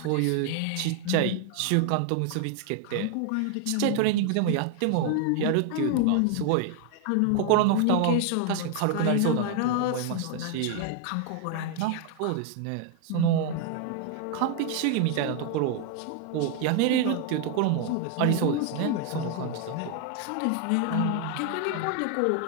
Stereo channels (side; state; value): both; different; correlation 0.00